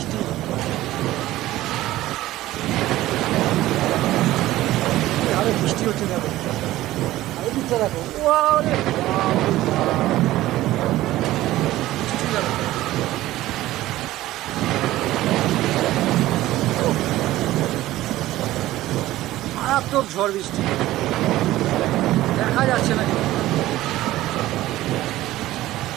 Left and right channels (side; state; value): left; quieter; 15.8 dB